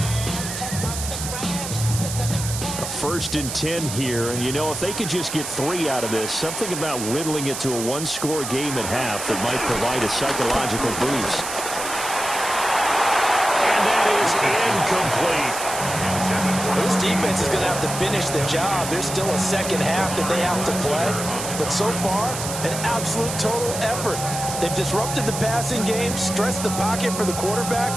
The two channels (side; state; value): right; noise; hiss, 6 dB below the sound